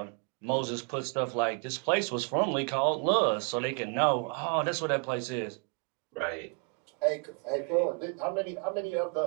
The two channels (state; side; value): quieter; left; 36.8 dB